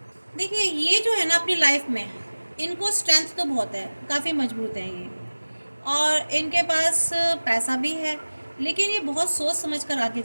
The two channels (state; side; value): inverted; both; correlation -1.00